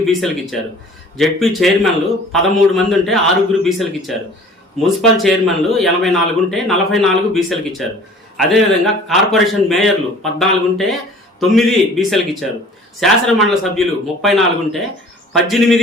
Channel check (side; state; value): both; normal; correlation 0.48